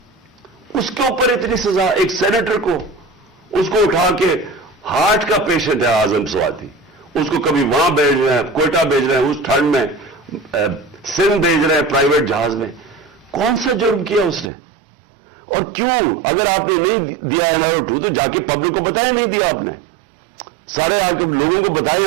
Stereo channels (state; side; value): drops out; left; at 14.5 s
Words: اس کے اوپر اتنی سزا, ایک سینیٹر کو, اس کو اٹھا کے, ہارٹ کا پیشنٹ ہے اعظم سواتی, اس کو کبھی وہاں بھیج رہے ہیں, کوئٹہ بھیج رہے ہیں, اس ٹھنڈ میں سندھ بھیج رہے ہیں پرائیویٹ جہاز میں. کون سا جرم کیا اس نے؟ اور کیوں؟ اگر آپ نے نہیں دیا NRO2 تو جا کے پبلک کو بتائیں نہیں دیا آپ نے. سارے آ کے لوگوں کو بتائیں